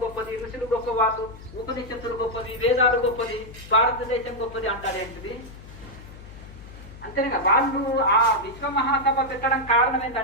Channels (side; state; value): left; noise; hum, 16 dB below the sound